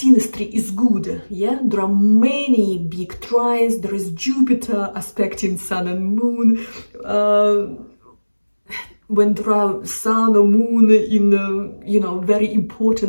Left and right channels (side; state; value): both; inverted; correlation -1.00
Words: is good, yeah, there are many big trines. There is Jupiter aspecting Sun and Moon. When there are Sun or Moon in, you know, very